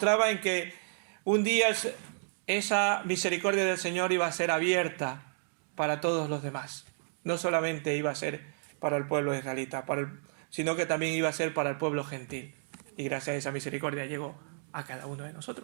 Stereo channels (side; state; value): left; silent; digital silence